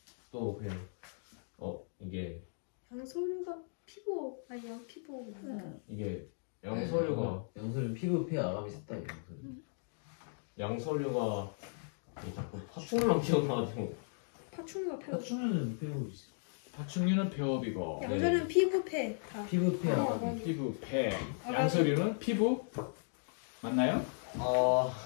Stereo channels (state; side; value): silent; right; digital silence